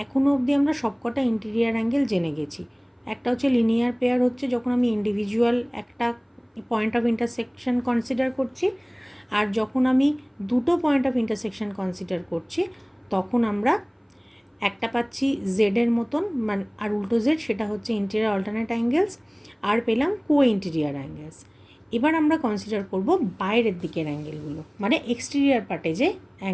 এখনও অবধি আমরা সবকটা ইন্টেরিয়ার অ্যাঙ্গেল জেনে গেছি। একটা হচ্ছে লিনিয়ার পেয়ার, হচ্ছে যখন আমি ইন্ডিভিজুয়াল একটা পয়েন্ট অফ ইন্টারসেকশন কনসিডার করছি, আর যখন আমি দুটো পয়েন্ট অফ ইন্টারসেকশন কনসিডার করছি তখন আমরা একটা পাচ্ছি জেডের মতন, মানে আর উল্টো জেড, সেটা হচ্ছে ইন্টেরিয়ার অল্টারনেট অ্যাঙ্গেলস, আর পেলাম কো ইন্টেরিয়ার অ্যাঙ্গেলস। এবার আমরা কনসিডার করব বাইরের দিকের অ্যাঙ্গেলগুলো, মানে এক্সটেরিয়ার পার্টে যে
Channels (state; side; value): identical; both; correlation 1.00